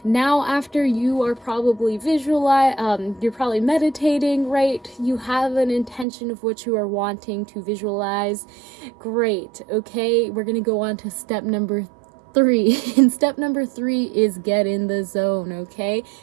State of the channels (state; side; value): drops out; left; at 6.1 s